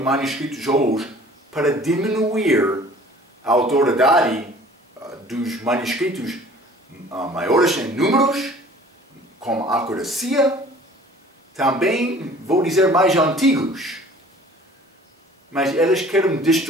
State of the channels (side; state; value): both; normal; correlation 0.49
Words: hoje, para diminuir a autoridade dos manuscritos maiores em números, com acuracia, também, vou dizer, mais antigos. Mas eles querem